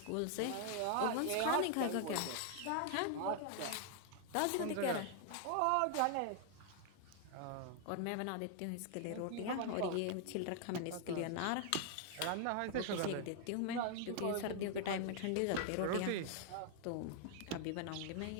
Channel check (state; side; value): different; both; correlation 0.00